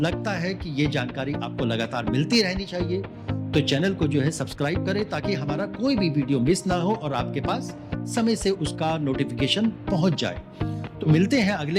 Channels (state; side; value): identical; both; correlation 1.00